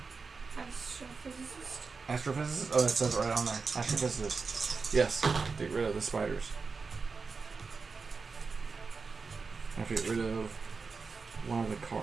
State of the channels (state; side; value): quieter; left; 4.7 dB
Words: Astrophysicist. Astrophysicist? Oh, it says it right on there. Astrophysicist. Yes. Get rid of the spiders. I have to get rid of one of the